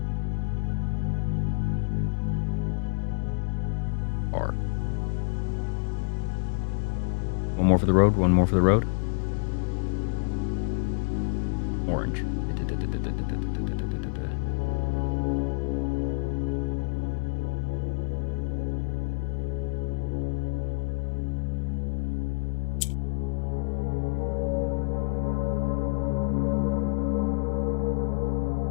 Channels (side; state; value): right; silent; digital silence